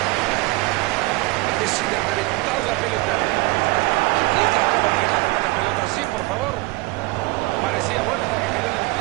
Decide reventar la pelota. Explica cómo regalan una pelota así, por favor. Parecía buena hasta que quedó en la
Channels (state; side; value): quieter; left; 22.8 dB